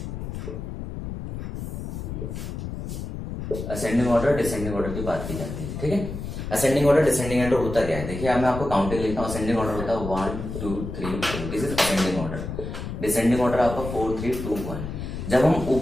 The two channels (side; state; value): left; noise; rumble, 7 dB below the sound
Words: असेंडिंग ऑर्डर डिसेंडिंग ऑर्डर की बात की जाती है। ठीक है, असेंडिंग ऑर्डर डिसेंडिंग ऑर्डर होता क्या है, देखिए अब मैं आपको काउंटिंग लिखता हूँ। असेंडिंग ऑर्डर होता है 1 2 3 4, this is ascending order. Descending order आपका 4 3 2 1। जब